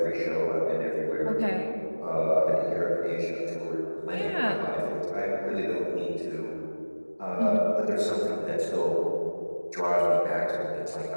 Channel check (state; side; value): inverted; both; correlation -1.00